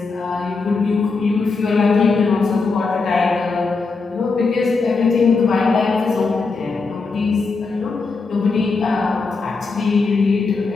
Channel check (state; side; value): quieter; right; 4.2 dB